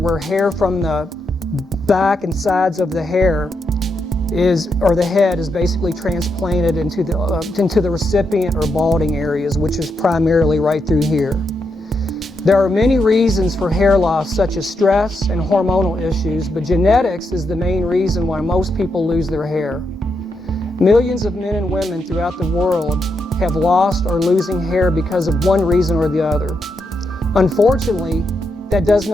hair from the back and sides of the hair the head is basically transplanted into the recipient or balding areas, which is primarily right through here. There are many reasons for hair loss, such as stress and hormonal issues, but genetics is the main reason why most people lose their hair. Millions of men and women throughout the world have lost or losing hair because of one reason or the other. Unfortunately, that does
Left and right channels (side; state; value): both; normal; correlation 0.82